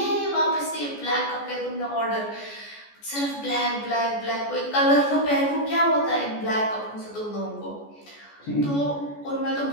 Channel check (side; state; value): right; late; 14 ms